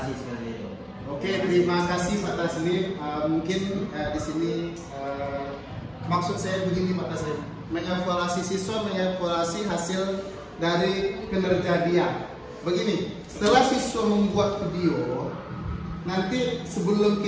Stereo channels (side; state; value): both; identical; correlation 1.00